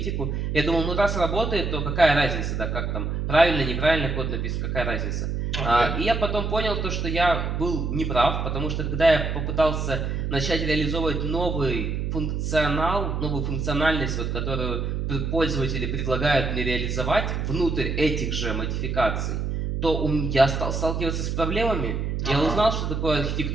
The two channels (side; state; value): right; noise; hum, 1 dB below the sound